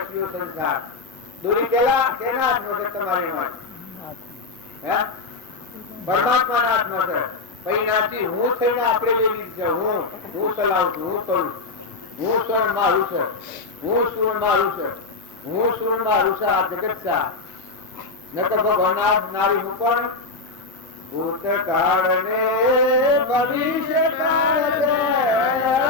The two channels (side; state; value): right; quieter; 3.7 dB